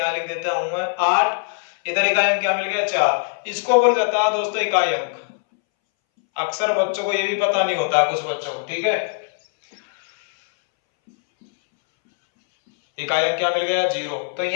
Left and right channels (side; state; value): right; silent; 63 dB below the other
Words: लिख देता हूं मैं 8। इधर इकाई अंक क्या मिल गया? 4। इसको बोल देता है दोस्तों इकाई अंक। अक्सर बच्चों को ये भी पता नहीं होता है, कुछ बच्चों को। ठीक है। इकाई अंक क्या मिल गया? 0। तो